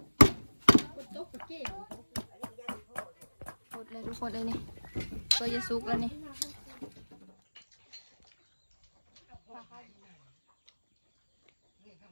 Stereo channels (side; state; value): both; inverted; correlation -1.00